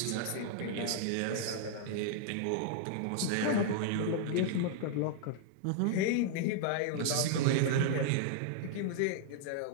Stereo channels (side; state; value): both; different; correlation -0.01